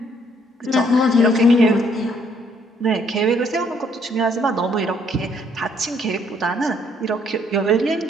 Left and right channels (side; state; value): both; normal; correlation 0.67